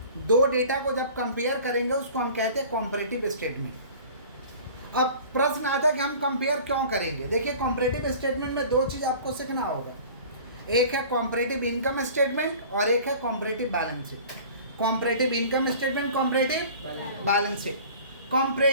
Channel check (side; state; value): both; inverted; correlation -0.44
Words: 2 डेटा को जब कंपेयर करेंगे उसको हम कहते हैं कॉम्परेटिव स्टेटमेंट। अब प्रश्न आता है कि हम कंपेयर क्यों करेंगे। देखिए, कॉम्परेटिव स्टेटमेंट में 2 चीज़ आपको सीखना होगा, एक है कॉम्परेटिव इनकम स्टेटमेंट और एक है comparative balance sheet. Comparative income statement, comparative balance sheet.